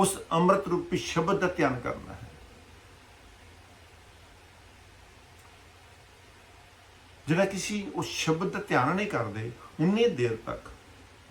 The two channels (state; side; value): identical; both; correlation 1.00